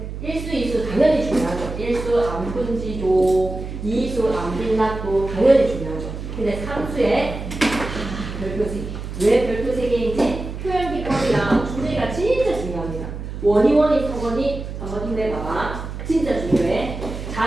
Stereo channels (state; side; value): noise; right; hum, 8 dB below the sound